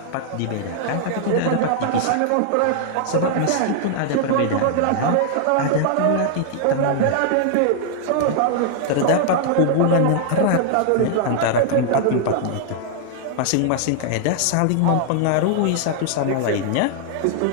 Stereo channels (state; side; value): different; both; correlation 0.00